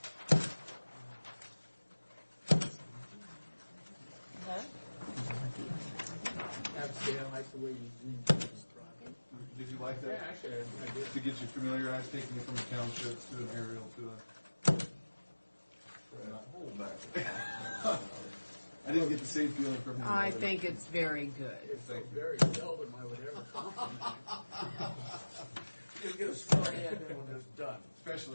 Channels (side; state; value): both; inverted; correlation -1.00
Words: Huh? Actually, I like the way you described it. Did you like that? Yeah, actually, I did. To get you familiarized, taking it from the townships to an aerial to a... Hold back. I didn't get the same feeling from him. I think it's very good. It's so very seldom I would ever Just get a story and then when it's done.